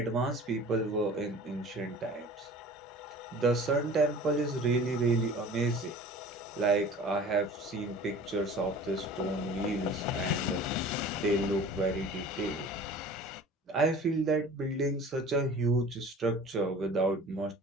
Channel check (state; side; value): normal; both; correlation 0.43